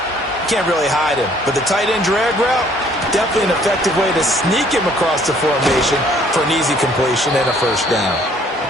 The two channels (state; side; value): normal; both; correlation 0.60